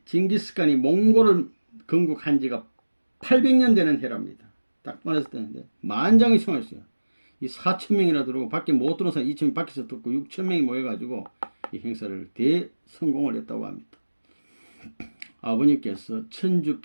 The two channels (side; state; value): both; inverted; correlation -1.00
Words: 몽골을 건국한 지가 800년 되는 해랍니다. 딱 말했을 때인데 만장이 성했어요. 이 4,000명이나 들어오고 밖에 못 들어온 사람 2,000명 밖에서 듣고 6,000명이 모여가지고 이 행사를 대성공을 했다고 합니다. 아버님께서